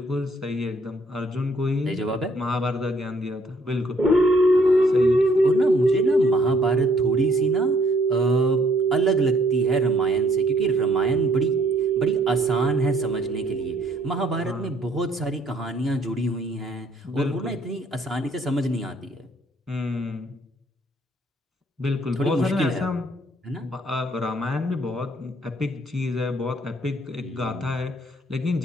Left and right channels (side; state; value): both; normal; correlation 0.65